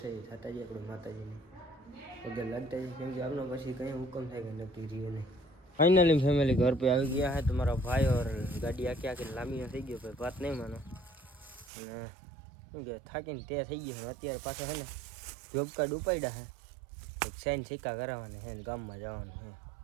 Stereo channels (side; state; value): left; drops out; at 11.7 s